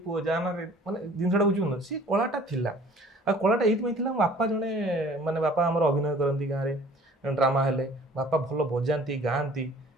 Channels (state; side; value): normal; both; correlation 0.51